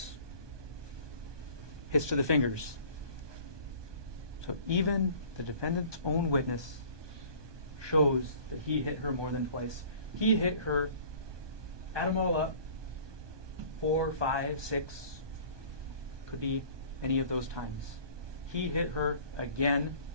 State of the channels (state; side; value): late; left; 1.2 ms